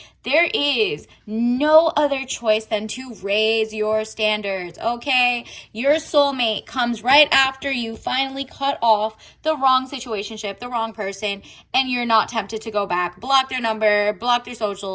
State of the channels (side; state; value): both; identical; correlation 1.00